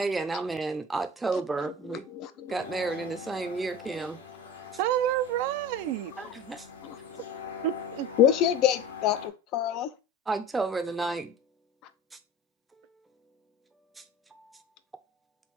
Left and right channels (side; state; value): both; normal; correlation 0.36